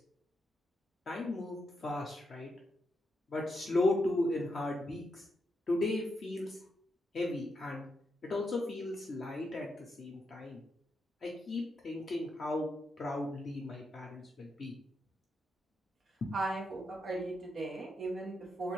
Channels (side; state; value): both; normal; correlation 0.83